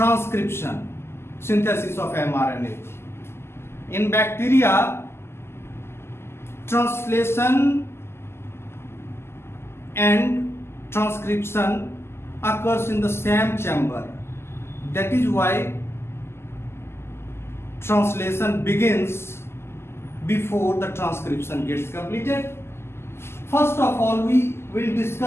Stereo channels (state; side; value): late; right; 0.12 ms